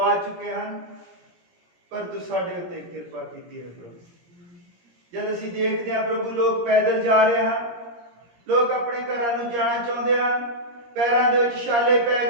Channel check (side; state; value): left; late; 17 ms